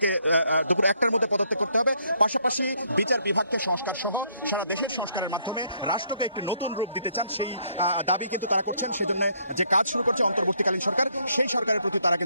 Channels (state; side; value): inverted; both; correlation -0.69